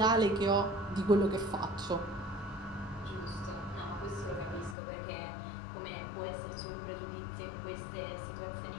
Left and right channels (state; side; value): drops out; right; at 4.8 s